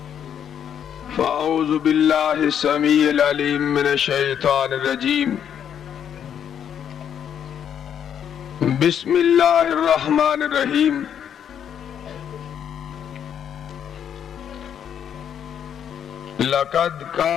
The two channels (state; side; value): quieter; right; 8.8 dB